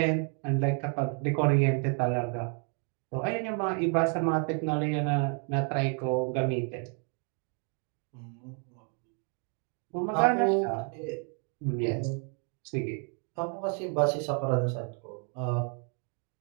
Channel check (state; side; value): quieter; left; 39.8 dB